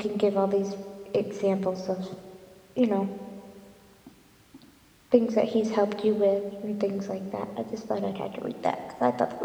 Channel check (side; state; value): both; identical; correlation 1.00